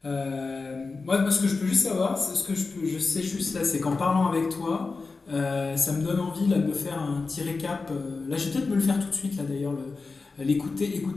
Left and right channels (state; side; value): quieter; right; 4.1 dB